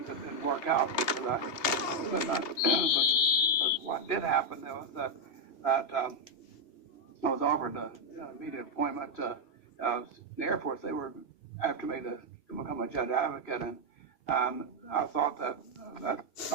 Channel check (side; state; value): right; late; 2.7 ms